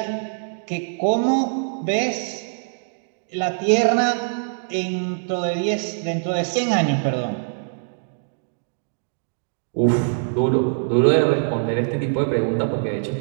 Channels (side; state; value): left; silent; digital silence